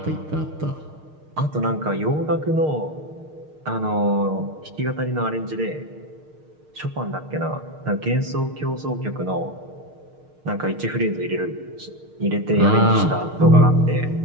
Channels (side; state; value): left; late; 6.5 ms